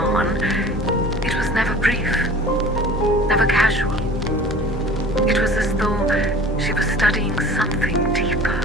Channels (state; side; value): normal; both; correlation 0.43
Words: it was never brief, never casual. It was as though she was studying something deeper